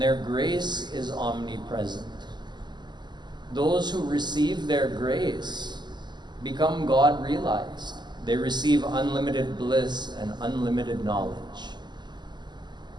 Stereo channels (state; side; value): late; left; 0.21 ms